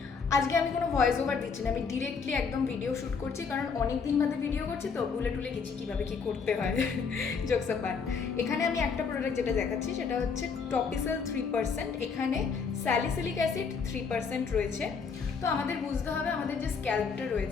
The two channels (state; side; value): quieter; right; 5.5 dB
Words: আজকে আমি কোনো ভয়েস ওভার দিচ্ছি না, আমি ডিরেক্টলি একদম ভিডিও শ্যুট করছি, কারণ অনেক দিন বাদে ভিডিও করছি, তো ভুলে টুলে গেছি কীভাবে কী করতে হয়। জোকস অ্যাপার্ট, এখানে আমি একটা প্রোডাক্ট যেটা দেখাচ্ছি সেটা হচ্ছে টপিসেল 3%। এখানে স্যালিসিলিক অ্যাসিড 3% রয়েছে। তো আমাদের বুঝতে হবে, আমাদের যে স্ক্যাল্পটা